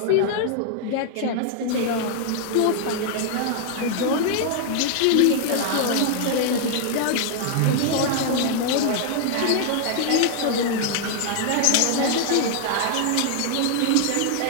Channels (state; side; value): different; both; correlation 0.00